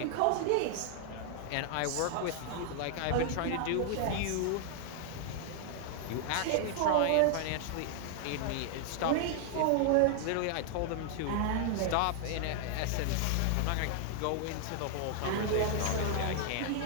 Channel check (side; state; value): both; different; correlation 0.00